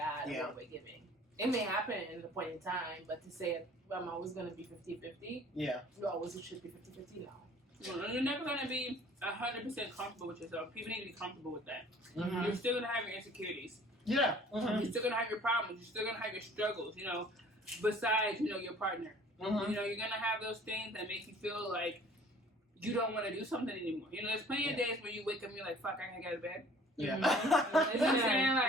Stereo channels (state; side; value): normal; both; correlation 0.52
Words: and what we're giving. It may happen at a point in time, but to say I'm always gonna be 50-50, Yeah. you always should be 50-50 now. Well, you're never going to be 100% comfortable with yourself. People need to be comfortable with that. Mm-hmm. You're still going to have your insecurities. Yeah. Mm-hmm. You're still going to have your problems. You're still going to have your struggles, you know, besides, you know, your partner. Mm-hmm. You know, you're going to have those things that make you feel like you don't want to do something anymore. You know, there's plenty of days where you wake up and you're like, fuck, I can't get out of bed. Yeah. You know what I'm saying?